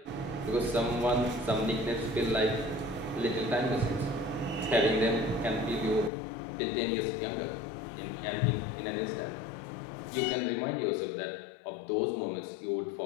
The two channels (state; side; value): drops out; right; at 6.1 s